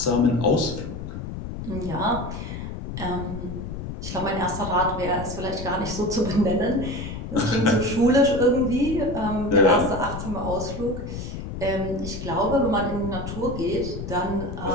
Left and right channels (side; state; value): left; noise; rumble, 7 dB below the sound